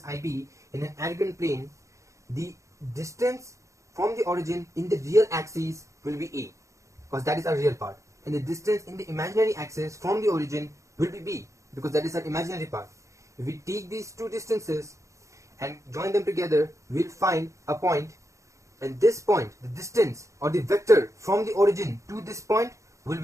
ib in an Argand plane, the distance from the origin in the real axis will be a, because that is our real part, and the distance in the imaginary axis from the origin will be b, because that is our imaginary part. If we take these two distances and join them together, we'll find a point, and this point, the distance or the vector from the origin to this point, will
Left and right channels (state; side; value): late; left; 0.15 ms